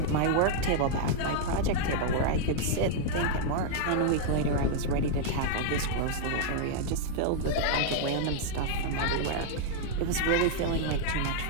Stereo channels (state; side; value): different; both; correlation -0.01